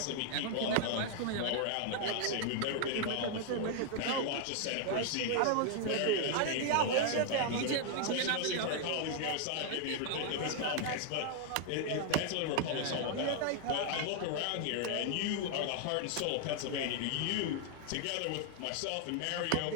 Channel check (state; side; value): different; both; correlation 0.00